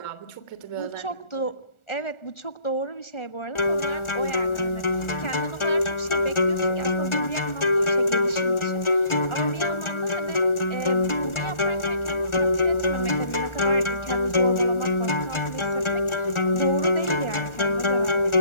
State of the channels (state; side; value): late; right; 1.4 ms